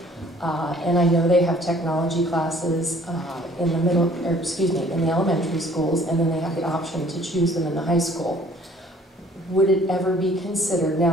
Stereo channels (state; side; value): normal; both; correlation 0.56